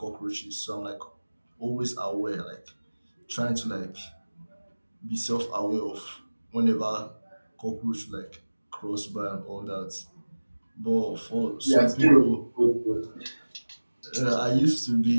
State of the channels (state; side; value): inverted; both; correlation -1.00